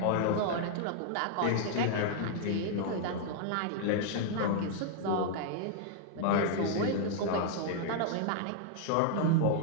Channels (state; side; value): different; both; correlation -0.01